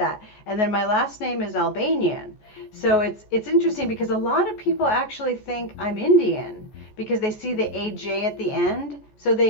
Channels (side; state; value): right; late; 14 ms